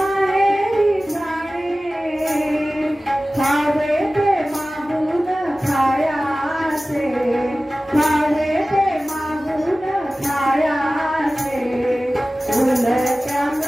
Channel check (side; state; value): both; normal; correlation 0.96